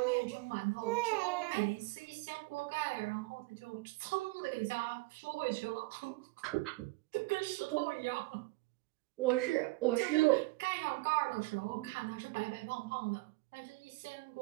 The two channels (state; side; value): quieter; left; 22.5 dB